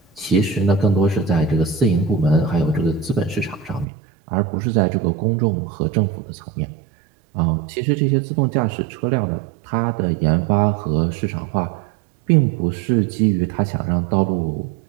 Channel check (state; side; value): drops out; left; at 3.9 s